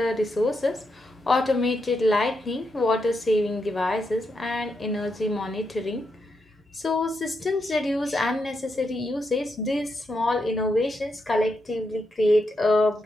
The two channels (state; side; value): normal; both; correlation 0.83